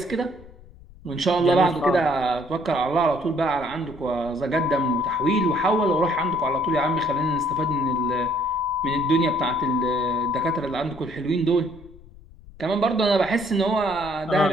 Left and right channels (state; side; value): noise; left; rumble, 21 dB below the sound